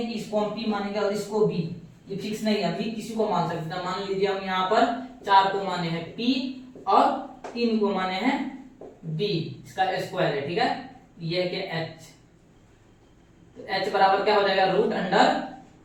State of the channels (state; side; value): identical; both; correlation 1.00